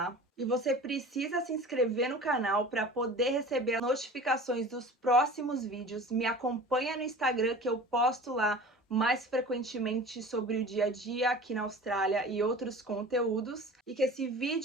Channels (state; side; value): normal; both; correlation 0.39